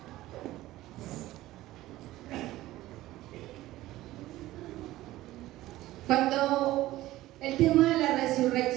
Cuando el tema de la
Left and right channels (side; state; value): left; quieter; 16.3 dB